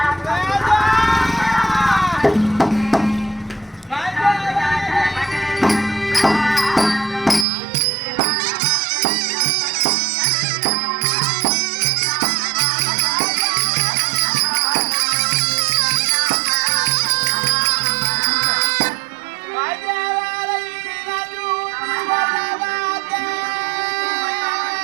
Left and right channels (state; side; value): drops out; left; at 7.5 s